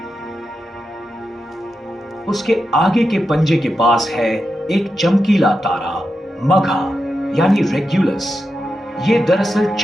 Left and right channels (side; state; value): both; normal; correlation 0.88